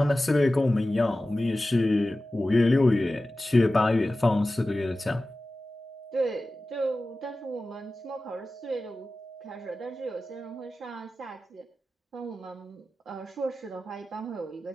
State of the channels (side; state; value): both; normal; correlation 0.95